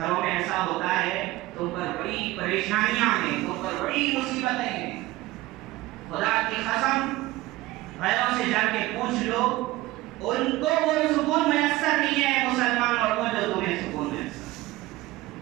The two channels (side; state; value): left; quieter; 18.4 dB